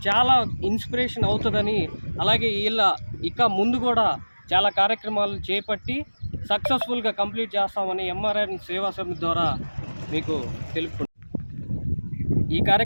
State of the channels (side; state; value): both; inverted; correlation -1.00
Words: చాలా ఇన్స్పిరేషన్ అవుతుందని, అలాగే ఇక ముందు కూడా చాలా కార్యక్రమాలు చేపట్టి సక్సెస్ఫుల్గా కంప్లీట్ చేస్తామని ఎంఆర్ఎన్ సేవా సమితి ద్వారా మీకు తెలుపుకుంటున్నాను. ఈ